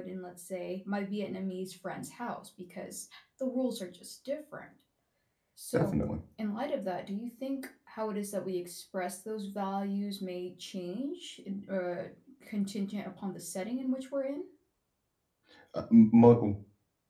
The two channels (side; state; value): both; identical; correlation 1.00